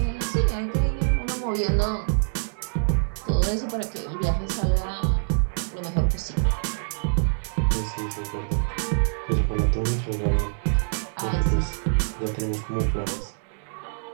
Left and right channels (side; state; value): left; silent; digital silence